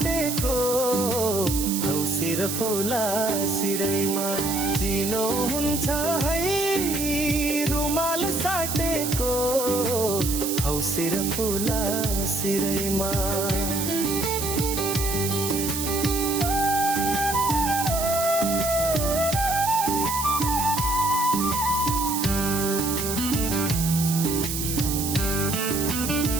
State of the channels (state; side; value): noise; right; hiss, 4 dB below the sound